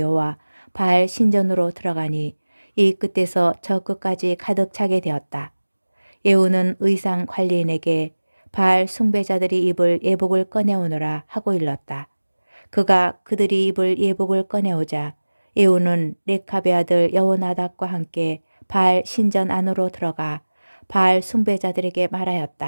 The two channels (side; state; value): both; inverted; correlation -1.00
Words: 바알 신전으로 들어가니 이 끝에서 저 끝까지 가득 차게 되었다. 예후는 의상 관리인에게 바알 숭배자들이 입을 예복을 꺼내오너라 하고 일렀다. 그가 그들이 입을 예복을 꺼내오자 예후는 레캅의 아들 여호나답과 함께 바알 신전 안으로 들어가 바알 숭배자들에게